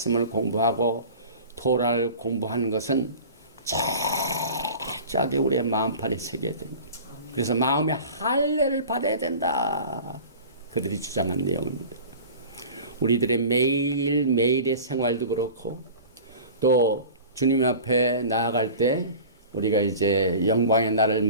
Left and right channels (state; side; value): inverted; both; correlation -0.39